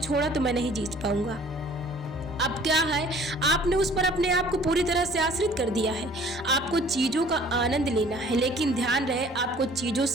तो मैं नहीं जी पाऊंगा। अब क्या है, आपने उस पर अपने आप को पूरी तरह से आश्रित कर दिया है। आपको चीजों का आनंद लेना है, लेकिन ध्यान रहे आपको चीजों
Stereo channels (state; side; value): normal; both; correlation 0.53